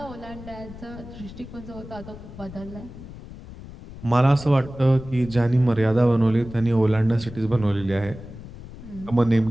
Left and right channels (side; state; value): left; noise; rumble, 15 dB below the sound